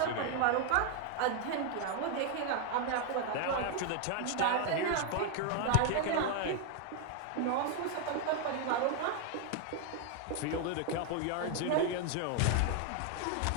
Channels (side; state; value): both; different; correlation 0.01